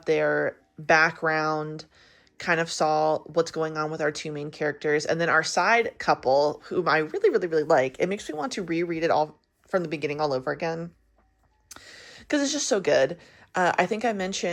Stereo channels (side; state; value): both; identical; correlation 1.00